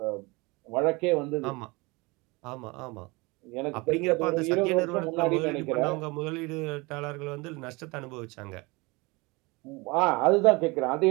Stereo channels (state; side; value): quieter; left; 25.3 dB